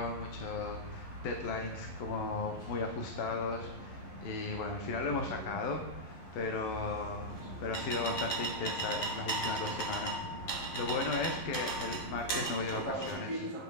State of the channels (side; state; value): right; late; 11 ms